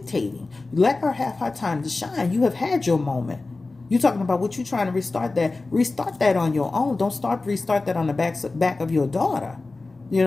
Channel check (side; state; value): right; quieter; 3.5 dB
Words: Let her have her time to shine. You have had your moment. You're talking about what you're trying to restart that. Restart that on your own. Don't restart that on the back of your daughter. You